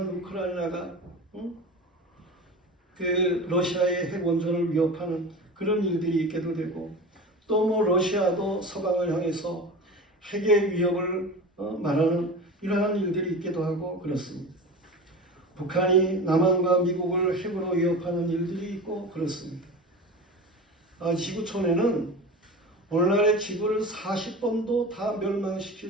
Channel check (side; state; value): both; normal; correlation 0.32